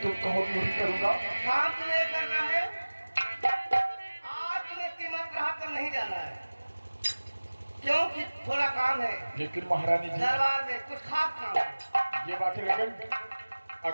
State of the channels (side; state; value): both; inverted; correlation -1.00